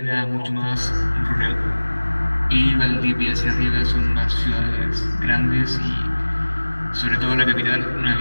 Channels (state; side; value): inverted; both; correlation -1.00